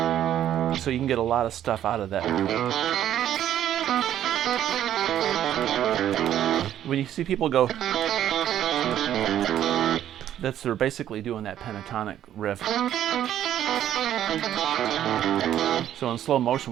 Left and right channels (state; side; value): quieter; left; 11.2 dB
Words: so you can get a lot of stuff out of that. When you see people go, they're basically doing that pentatonic riff. So in slow motion,